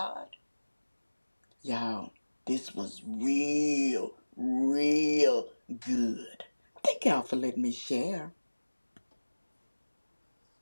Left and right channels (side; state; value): both; inverted; correlation -1.00